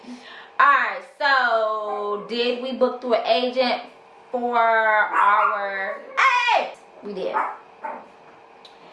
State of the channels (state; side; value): identical; both; correlation 1.00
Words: Alright, so did we book through an agent for our... Hey! We did.